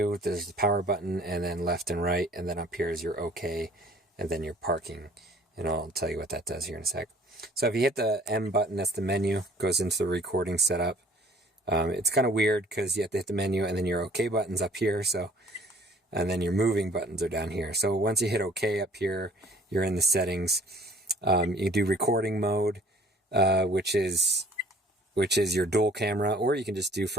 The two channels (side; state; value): both; normal; correlation 0.54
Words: There's the power button and then left and right. And then up here is your OK and then your parking. And I'll tell you what that does here in a sec. So if you hit the M button, that's the menu, goes into the recording setup. It's kind of weird because you have to hit the menu and then your OK button's up here. And then your moving buttons are down here. So once you hit OK up here, you're in the settings. You do recording mode, which is your dual camera, or you can just do